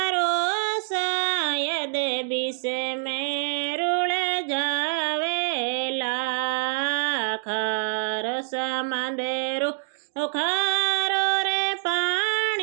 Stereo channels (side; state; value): left; silent; digital silence